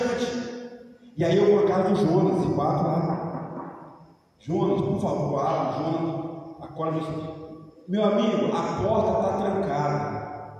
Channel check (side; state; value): both; identical; correlation 1.00